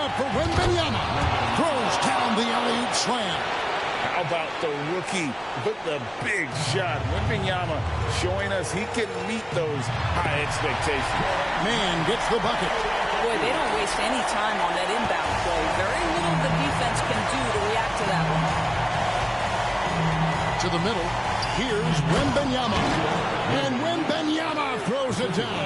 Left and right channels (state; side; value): identical; both; correlation 1.00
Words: for Wembanyama. Throws down the alley-oop slam. How about the rookie with the big shot? Wembanyama showing us he can meet those high expectations. Man gets the bucket. Boy, they don't waste any time on that inbound play. Very little the defense can do to react to that one. To the middle. Here's Wembanyama. And Wembanyama throws it